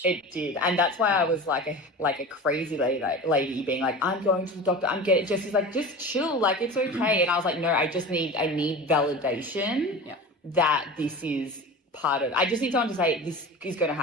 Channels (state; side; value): normal; both; correlation 0.33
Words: It did. And that's why I was like a crazy lady being like, I'm going to the doctor. Jesse's like, just chill. Like, it's okay. And I was like, no, I need validation that this is part of, I just need someone to say this is going to